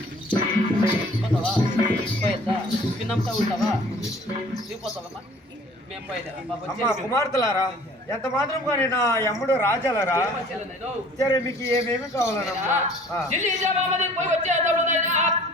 పిన్నంతా ఉంటావా దిగిపోతావమ్మా మేము అమ్మ కుమార్తెలారా ఎంత మాత్రం కానీ నా యమ్ముడు రాజాలరా సరే మీకు ఏమేమి కావాలనమ్మా ఢిల్లీ జవాబు పోయి వచ్చేదాడు నాయనా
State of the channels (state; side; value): normal; both; correlation 0.51